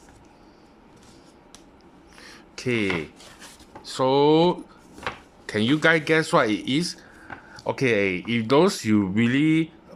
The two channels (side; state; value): both; identical; correlation 1.00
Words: Okay, so can you guys guess what it is? Okay, if those you really